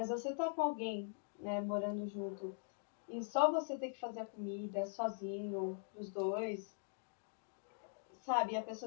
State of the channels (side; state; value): right; silent; digital silence